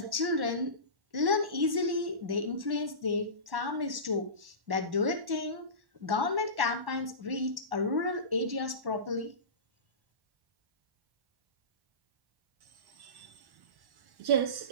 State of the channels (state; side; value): late; left; 1.1 ms